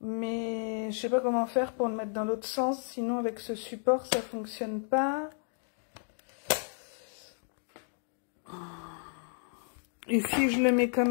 Mais je sais pas comment faire pour le mettre dans l'autre sens. Sinon, avec ce support, ça fonctionne pas. Et si je le mets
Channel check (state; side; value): silent; right; 56 dB below the other